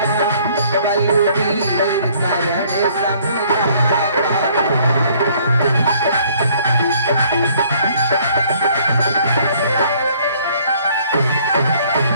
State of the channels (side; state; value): both; inverted; correlation -0.60